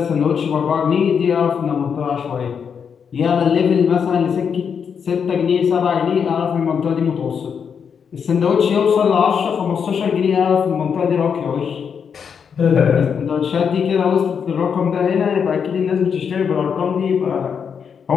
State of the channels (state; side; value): quieter; right; 6.9 dB